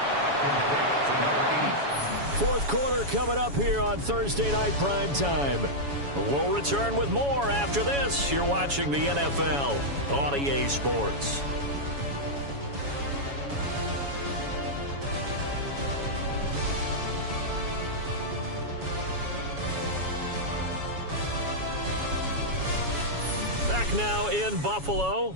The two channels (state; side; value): late; left; 7.1 ms